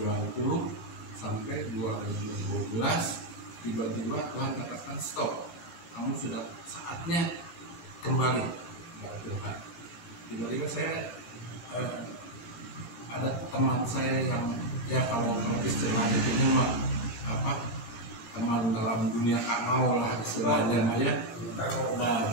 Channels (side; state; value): right; late; 17 ms